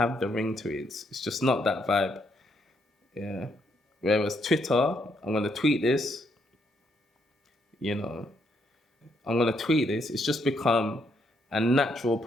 the ring to it. It's just not that vibe. Yeah. Whereas Twitter, I'm gonna tweet this. I'm gonna tweet this. It's just become a natural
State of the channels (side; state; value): both; normal; correlation 0.74